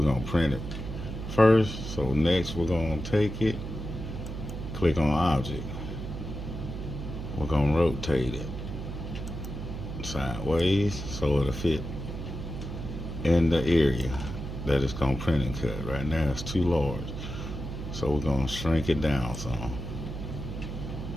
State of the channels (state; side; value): noise; right; hum, 7 dB below the sound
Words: gonna print it first. So next, we're gonna take it, click on object. We're gonna rotate it sideways so it'll fit in the area that it's gonna print and cut. Right now, it's too large, so we're gonna shrink it down some.